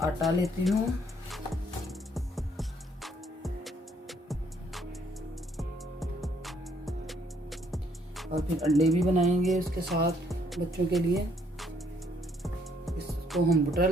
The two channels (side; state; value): both; normal; correlation 0.67